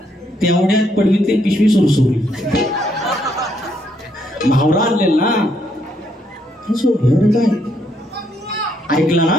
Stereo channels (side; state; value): both; normal; correlation 0.73